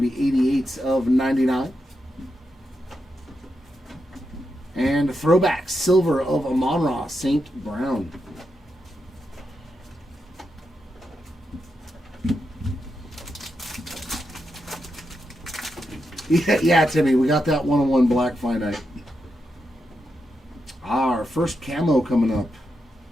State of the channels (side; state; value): both; normal; correlation 0.85